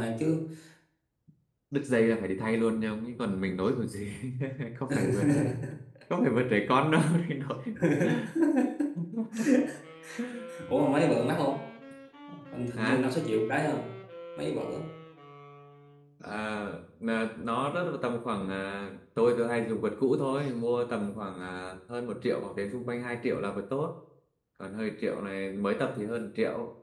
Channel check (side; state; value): both; identical; correlation 1.00